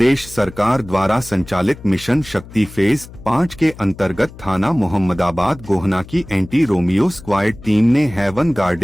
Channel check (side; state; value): left; noise; hum, 18 dB below the sound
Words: सरकार द्वारा संचालित मिशन शक्ति फेज 5 के अंतर्गत थाना मोहम्मदाबाद गोहना की एंटी रोमियो स्क्वाड टीम ने हेवन